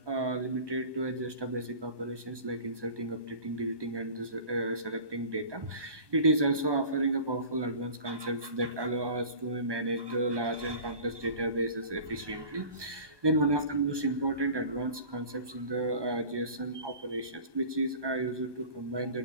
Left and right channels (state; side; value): late; left; 1.2 ms